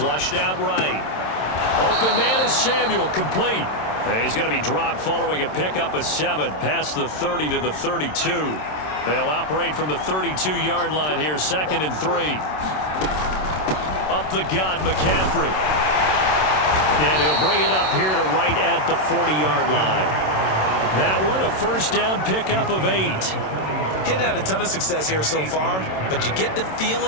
out right. Open man is Samuel, complete. And he's going to be dropped following a pickup of 7 past the 30 to the 32. They'll operate from the 32-yard line here, 2nd and 3. Up the gut, McCaffrey. And he'll bring it up here to right at the 40-yard line. That one, a 1st down pickup of 8. He's had a ton of success here so far, but you get the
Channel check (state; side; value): late; right; 27 ms